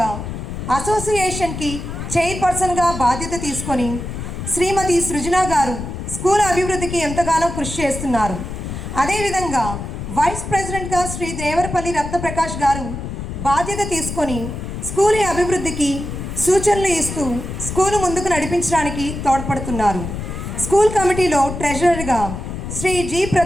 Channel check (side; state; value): left; noise; rumble, 7 dB below the sound